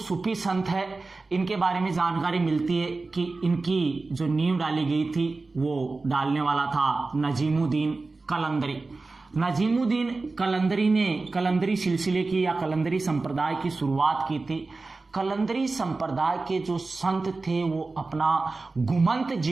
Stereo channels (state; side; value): quieter; left; 3.6 dB